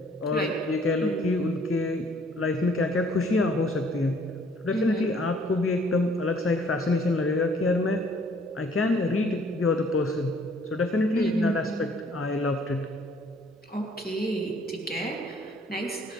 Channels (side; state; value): both; normal; correlation 0.60